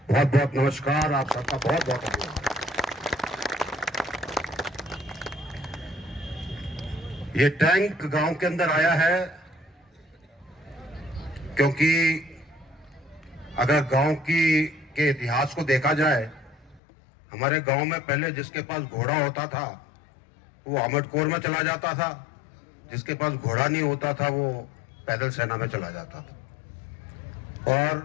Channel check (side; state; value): right; drops out; at 16.8 s